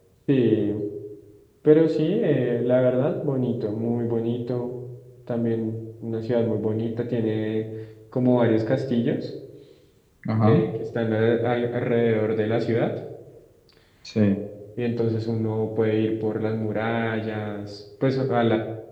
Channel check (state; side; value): identical; both; correlation 1.00